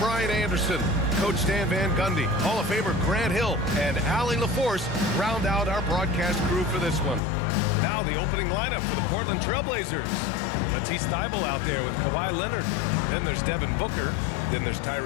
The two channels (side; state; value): right; drops out; at 7.2 s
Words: Anderson. Coach Stan Van Gundy, Hall of Famer Grant Hill, and Allie LaForce round out our broadcast crew for this one. Now the opening lineup for the Portland Trailblazers. Matisse Thybulle out there with Kawhi Leonard. Then there's Devin Booker. Then there's